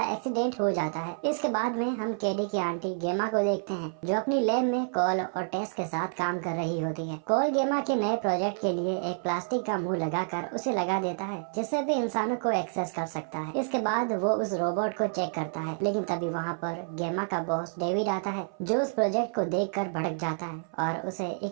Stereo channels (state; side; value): silent; left; 59 dB below the other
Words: एक्सीडेंट हो जाता है। इसके बाद में हम कैडी की आंटी गेमा को देखते हैं, जो अपनी लैब में कॉल और टेस्ट के साथ काम कर रही होती है। कॉल गेमा के नए प्रोजेक्ट के लिए एक प्लास्टिक का मुंह लगाकर उसे लगा देता है, जिससे भी इंसानों को एक्सेस कर सकता है। इसके बाद वो उस रोबोट को चेक करता है, लेकिन तभी वहाँ पर गेमा का बॉस डेविड आता है, जो उस प्रोजेक्ट को देखकर भड़क जाता है और उसे